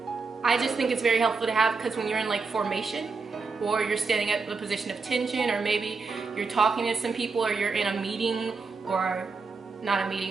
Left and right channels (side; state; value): left; quieter; 4.5 dB